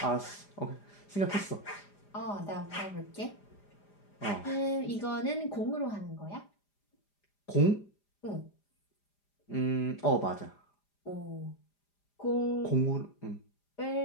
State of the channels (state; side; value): late; right; 5.0 ms